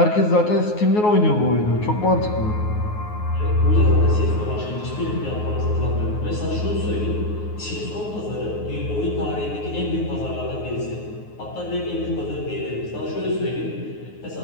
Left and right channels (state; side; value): late; right; 9.5 ms